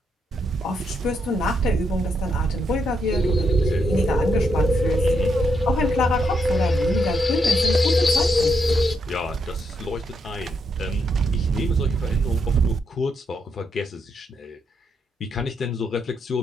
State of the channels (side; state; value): both; normal; correlation 0.79